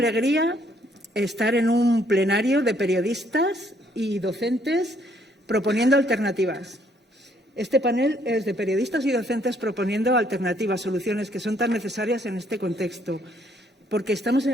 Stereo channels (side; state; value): both; normal; correlation 0.67